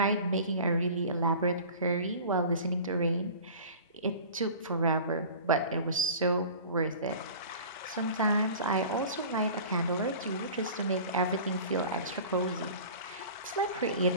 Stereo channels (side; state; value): both; inverted; correlation -0.40